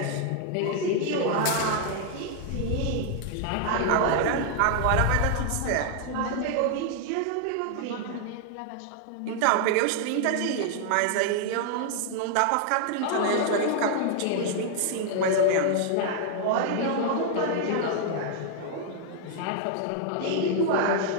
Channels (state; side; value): different; both; correlation 0.00